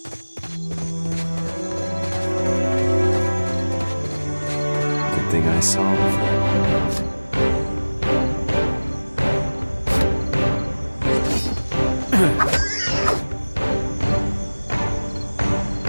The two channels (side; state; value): both; inverted; correlation -1.00